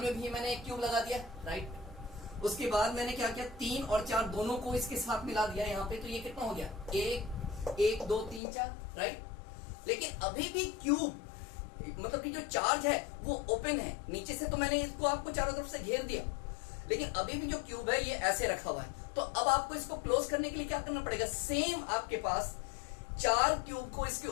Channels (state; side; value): drops out; right; at 8.4 s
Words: में भी मैंने एक क्यूब लगा दिया, राइट। उसके बाद मैंने क्या किया, 3 और 4 दोनों को इसके साथ मिला दिया यहाँ पे, तो ये कितना हो गया, 1 2 3 4, राइट। लेकिन अभी भी क्यूब मतलब कि जो चार्ज है वो ओपन है, नीचे से तो मैंने इसको आपको चारों तरफ से घेर दिया, लेकिन अभी भी जो क्यूब है ये ऐसे रखा हुआ है। तो अब आपको इसको क्लोज करने के लिए क्या करना पड़ेगा, सेम आपके पास 4 क्यूब को इसके